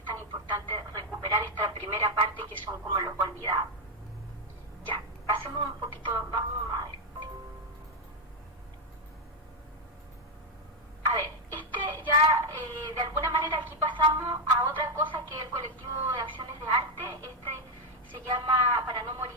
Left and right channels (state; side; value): normal; both; correlation 0.02